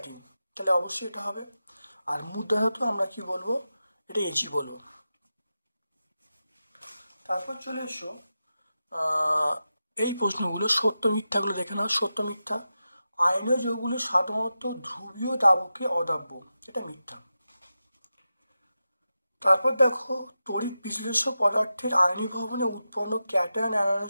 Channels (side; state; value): both; inverted; correlation -0.91